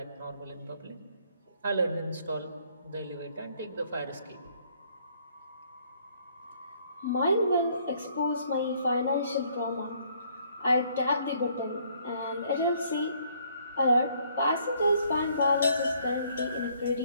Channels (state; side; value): inverted; both; correlation -0.65